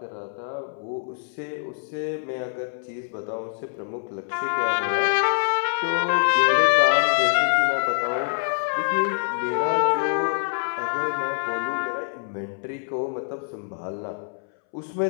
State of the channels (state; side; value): silent; right; 62 dB below the other